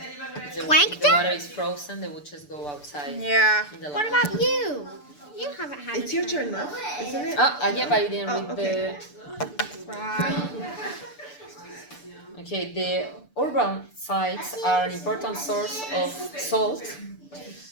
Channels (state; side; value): late; right; 6.8 ms